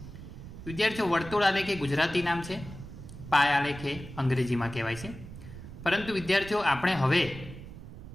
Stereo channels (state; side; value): noise; right; rumble, 13 dB below the sound